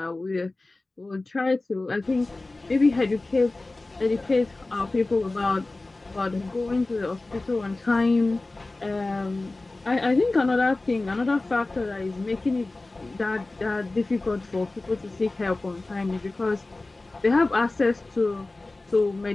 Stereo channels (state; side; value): quieter; right; 3.1 dB